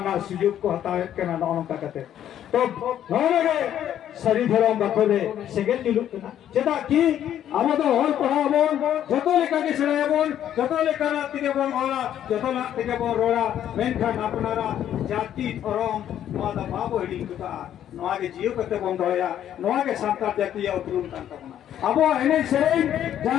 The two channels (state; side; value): quieter; right; 10.7 dB